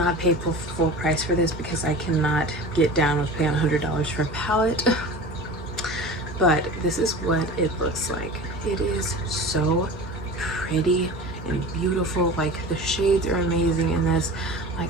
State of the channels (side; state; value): both; normal; correlation 0.35